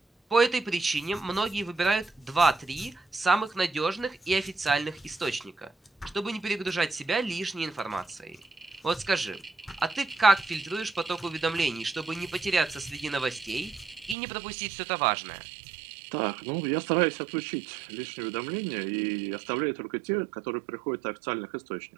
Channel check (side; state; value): left; drops out; at 14.2 s